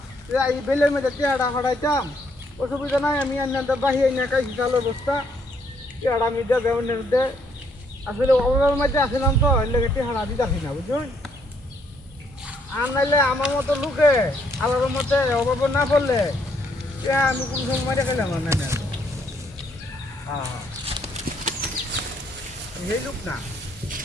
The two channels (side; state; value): both; normal; correlation 0.70